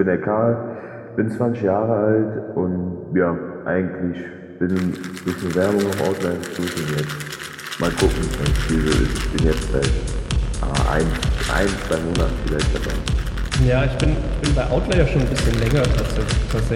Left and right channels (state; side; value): identical; both; correlation 1.00